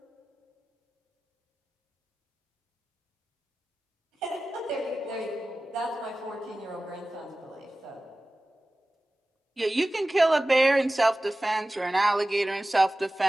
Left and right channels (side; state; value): both; normal; correlation 0.96